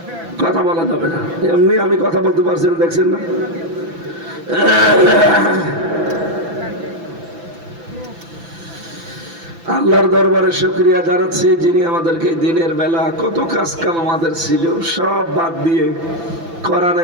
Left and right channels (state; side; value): late; left; 6.0 ms